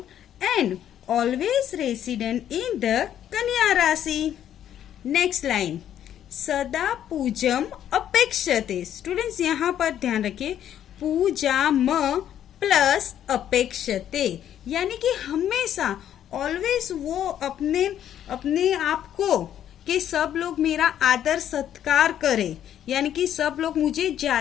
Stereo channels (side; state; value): right; quieter; 10.5 dB